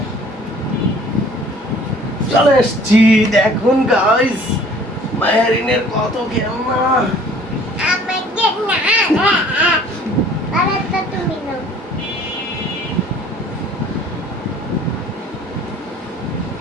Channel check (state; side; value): normal; both; correlation 0.52